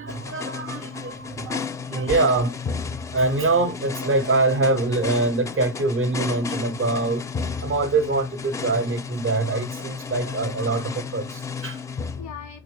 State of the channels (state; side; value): normal; both; correlation -0.01